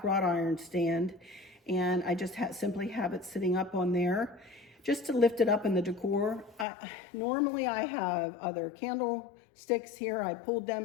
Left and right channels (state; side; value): drops out; right; at 6.7 s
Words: wrought iron stand. And I just simply have it sitting up on there just to lift it up in the decor. Normally I have other candlesticks here. I pulled